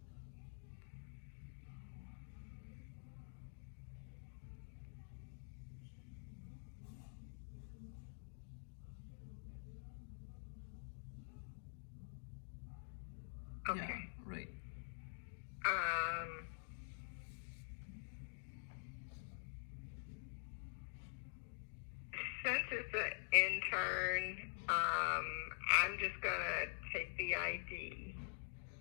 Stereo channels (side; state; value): right; silent; digital silence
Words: Okay. Yeah, right. Um, since it's an intern, I'm just gonna take the ID.